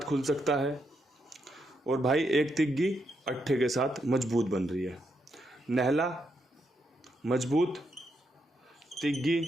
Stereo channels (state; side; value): normal; both; correlation 0.80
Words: सकता है, और भाई एक तिग्गी अट्ठे के साथ मजबूत बन रही है। नहला मजबूत, तिग्गी